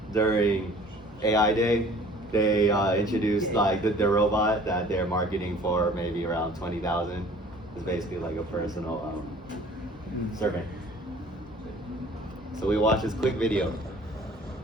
during AI Day, they introduced like their robot that they're marketing for maybe around 20,000. It's basically like a personal servant. So we watched this quick video.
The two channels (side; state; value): both; normal; correlation 0.50